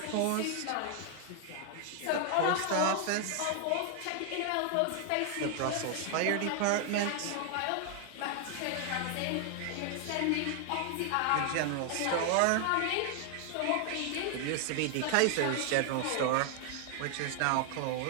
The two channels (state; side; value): different; both; correlation 0.00